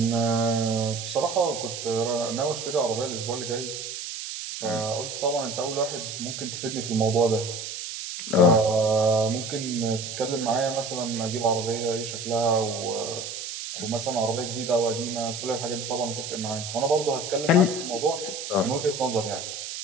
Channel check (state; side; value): noise; right; hiss, 7 dB below the sound